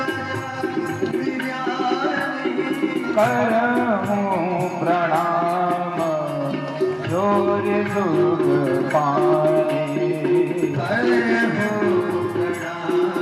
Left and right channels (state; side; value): identical; both; correlation 1.00